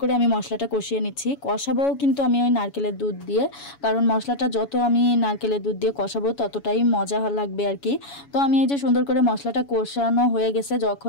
করে আমি মশলাটা কষিয়ে নিচ্ছি। কষাবো কিন্তু আমি ওই নারকেলের দুধ দিয়ে, কারণ মশলাটা যত আমি নারকেলের দুধ দিয়ে কষাবো ততটাই মজা লাগবে আর কি। তো আমি এই যে সুন্দর করে মশলাটা কষানো হয়ে গেছে,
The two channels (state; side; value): late; right; 7.1 ms